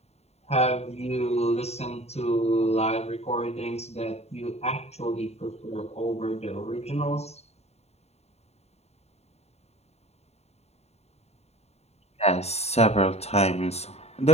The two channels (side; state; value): right; late; 0.31 ms